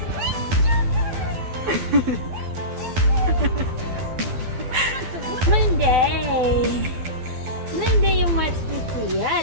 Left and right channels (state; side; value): late; left; 12 ms